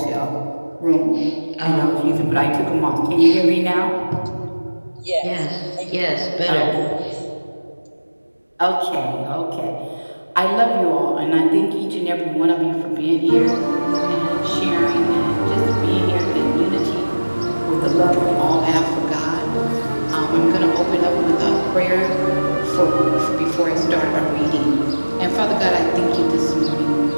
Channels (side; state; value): both; inverted; correlation -1.00